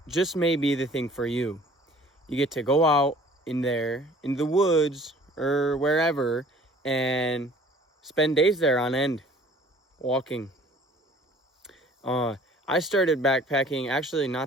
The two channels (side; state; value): both; normal; correlation 0.51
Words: just may be the thing for you. You get to go out in the woods or wherever and spend days there on end, walking. I started backpacking actually